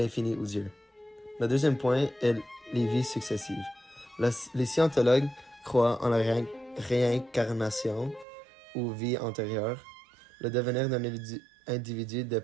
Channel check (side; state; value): left; drops out; at 8.2 s